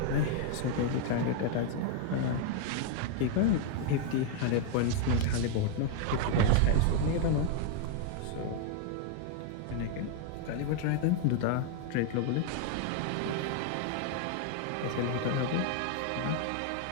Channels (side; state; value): both; different; correlation 0.00